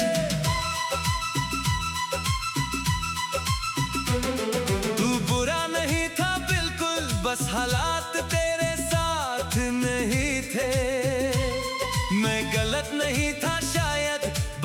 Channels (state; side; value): identical; both; correlation 1.00